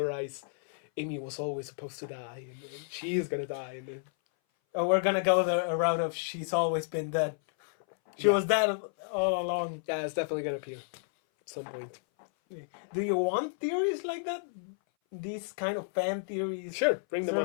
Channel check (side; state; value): right; silent; 57 dB below the other